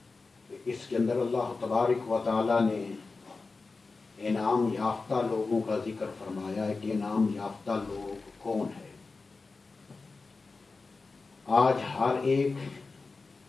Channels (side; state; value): right; quieter; 4.0 dB